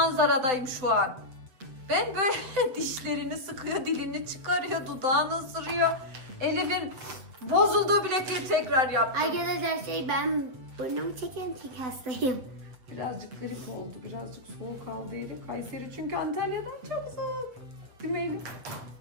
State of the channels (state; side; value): late; left; 7.6 ms